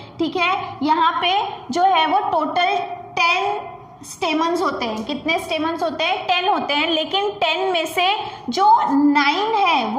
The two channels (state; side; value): identical; both; correlation 1.00